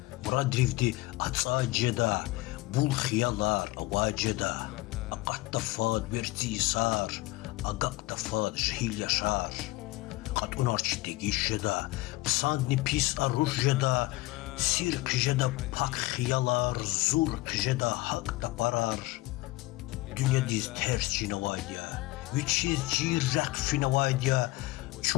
Muradrivdi atsaceda, bul xiyalar avaceda. Aqatta fad verti isar, aqaqta fad jhil yaşar. Qat unarçı degişeda, psandni pis arujeda. Sir kıjeda pak xiyalar, zur kıjeda hak da parar. Dünya diz ters cinavaydiya, viçiz cirrak finavaydiya.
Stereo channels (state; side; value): quieter; right; 20.1 dB